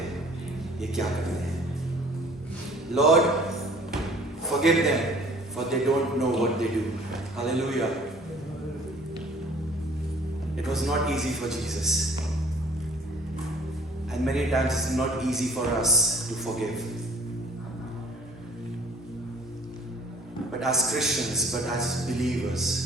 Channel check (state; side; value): normal; both; correlation 0.53